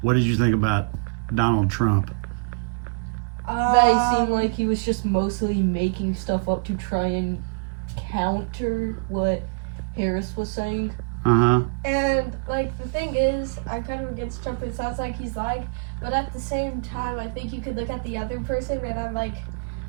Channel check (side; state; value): left; quieter; 35.3 dB